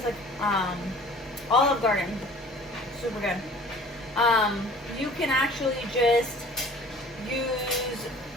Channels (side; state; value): both; normal; correlation 0.48